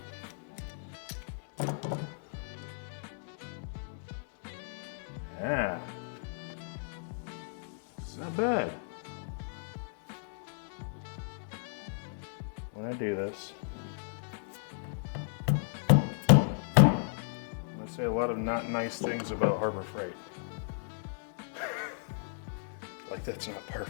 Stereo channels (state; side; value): silent; right; digital silence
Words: Yeah. It's not bad. When I do this, I'm going to say a lot of not nice things about Harbor Freight. Like that's not par